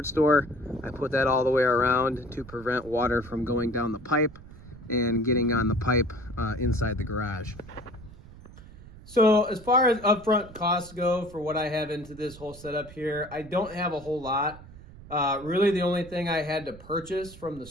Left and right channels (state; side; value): noise; right; rumble, 18 dB below the sound